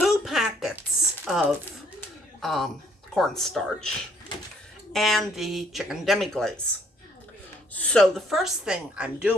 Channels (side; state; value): both; normal; correlation 0.65